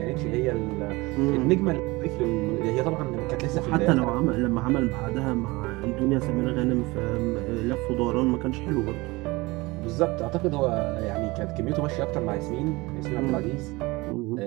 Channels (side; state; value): left; quieter; 22.6 dB